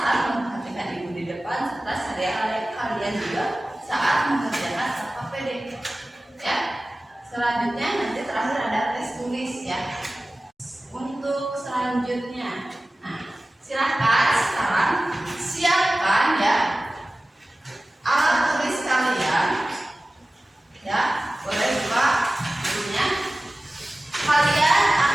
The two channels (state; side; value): normal; both; correlation 0.97